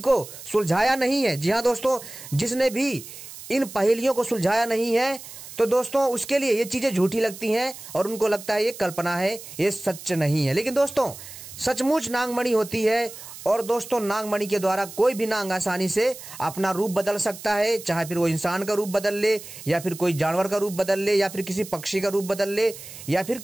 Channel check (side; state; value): right; noise; hiss, 14 dB below the sound